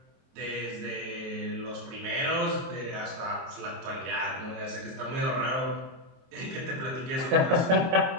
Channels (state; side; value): late; left; 23 ms